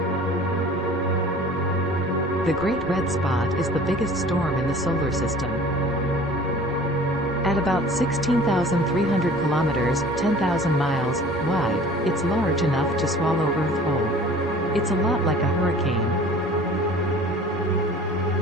The Great Red Spot is the biggest storm in the solar system. At about 16,300 kilometers, 10,000 miles, wide, it's large enough to swallow Earth whole. It's a lot like a hurricane.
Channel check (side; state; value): both; normal; correlation 0.46